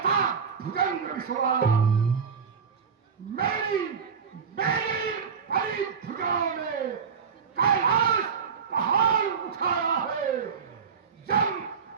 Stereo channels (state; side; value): quieter; left; 6.3 dB